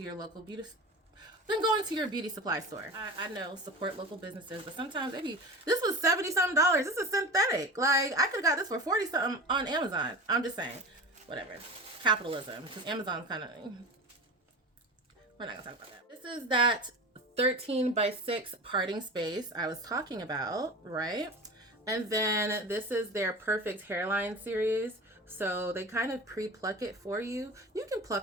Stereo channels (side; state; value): both; normal; correlation 0.33